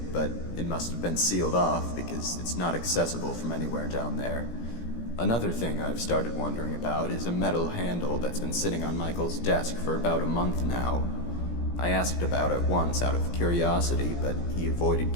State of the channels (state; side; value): late; right; 17 ms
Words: but it must have been sealed off because it's not accessible from anywhere down there. Another thing I've started wondering about is a metal handle that's been sitting on Michael's desk for about a month now. I asked about it once out of curiosity, but he avoided